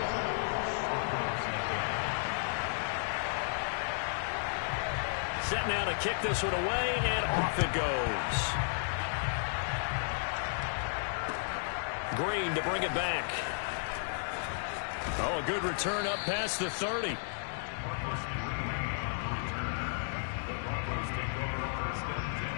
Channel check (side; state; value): right; silent; digital silence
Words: Set now to kick this one away, and off it goes. Green to bring it back. Oh, a good return up past the 30.